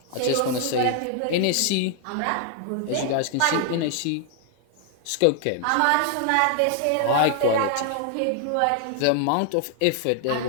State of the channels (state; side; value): different; both; correlation 0.00